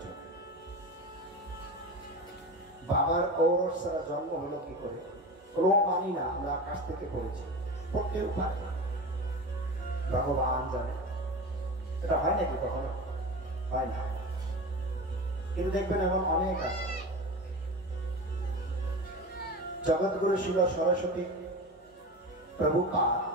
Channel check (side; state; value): both; normal; correlation 0.28